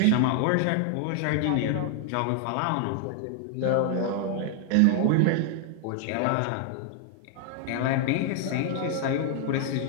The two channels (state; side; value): different; both; correlation 0.00